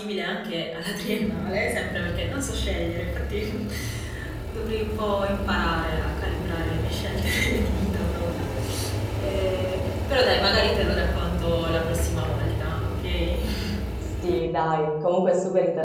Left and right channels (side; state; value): both; identical; correlation 1.00